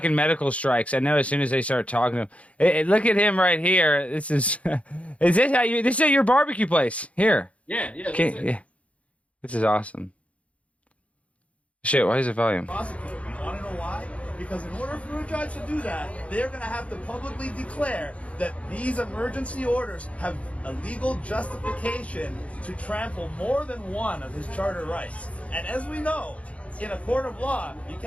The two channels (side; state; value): right; late; 0.064 ms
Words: medical strikes. I know as soon as they start talking to him. Look at him right here. This is. Is this how you? This is at your barbecue place here. Yeah. Yeah. This is awesome. Shit, why is it volume? You want to know why? Because in order for a judge to do that, they're going to have to publicly declare that these emergency orders have a legal justification to trample more than one of his charter rights. And as we know, in a court of law, you